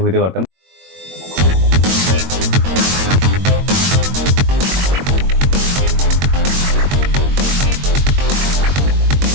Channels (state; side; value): late; left; 22 ms